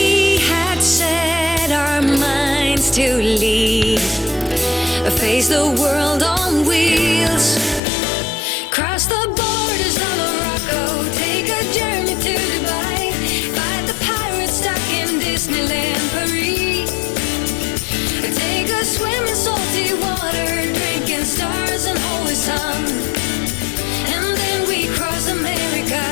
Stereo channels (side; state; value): right; drops out; at 7.8 s